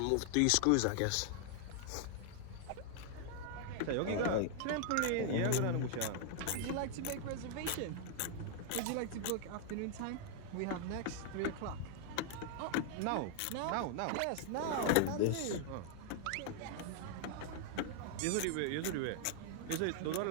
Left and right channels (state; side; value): different; both; correlation 0.00